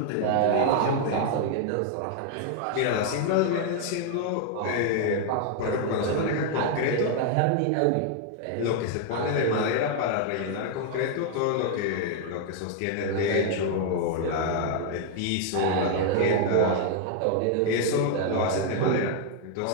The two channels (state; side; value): different; both; correlation 0.00